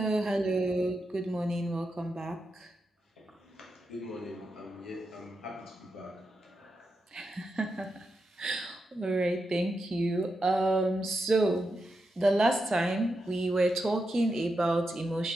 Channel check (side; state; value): both; normal; correlation 0.87